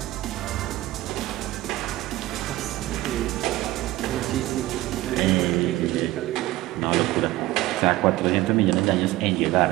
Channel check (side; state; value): left; quieter; 17.2 dB